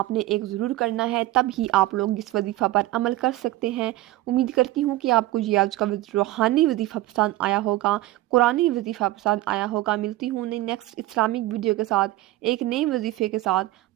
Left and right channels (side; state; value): left; quieter; 16.8 dB